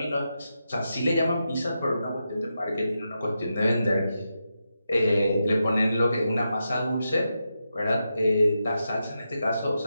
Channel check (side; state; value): both; inverted; correlation -0.87